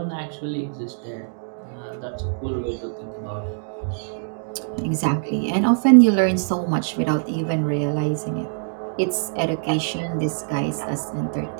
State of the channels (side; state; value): left; silent; digital silence